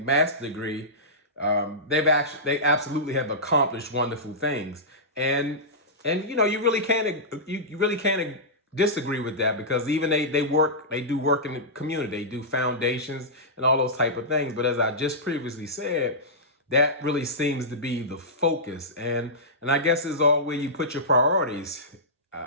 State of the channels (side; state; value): both; normal; correlation -0.15